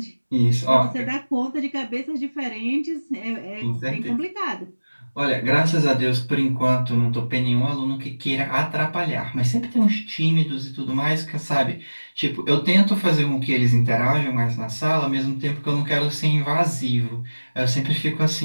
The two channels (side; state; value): both; inverted; correlation -1.00